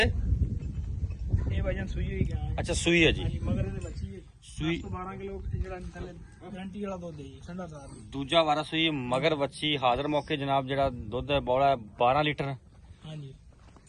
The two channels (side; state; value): both; identical; correlation 1.00